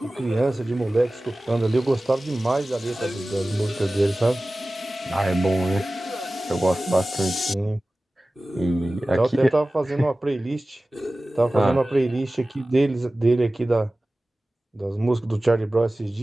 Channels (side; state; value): both; normal; correlation 0.97